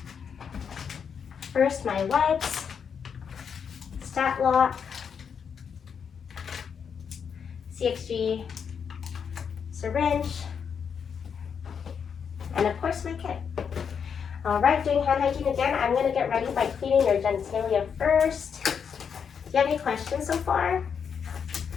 First, my wipes, stat lock, CXG, syringe, and of course my kit. All right, doing hand hygiene again, I'm going to get ready by cleaning your genitalia first. Do you have any questions so far?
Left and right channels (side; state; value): right; quieter; 6.9 dB